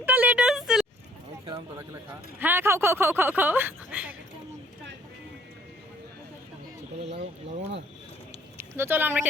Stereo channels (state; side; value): normal; both; correlation 0.60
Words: লেটে এসেছিল। হ্যাঁ, খাও খাও খাও খাও খাও। তো চলো আমরা